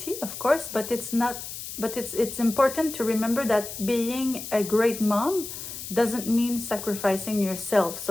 of course, but it's important to remember that being a great mom doesn't mean sacrificing yourself.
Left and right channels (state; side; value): noise; left; hiss, 9 dB below the sound